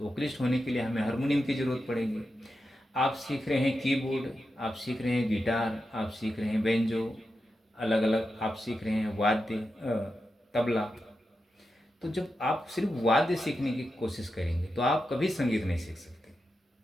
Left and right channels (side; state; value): both; normal; correlation 0.89